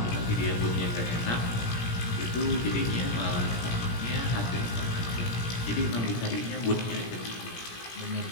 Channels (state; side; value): late; right; 17 ms